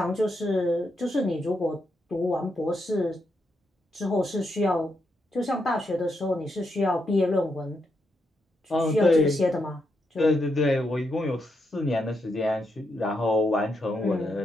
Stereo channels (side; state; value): both; normal; correlation 0.82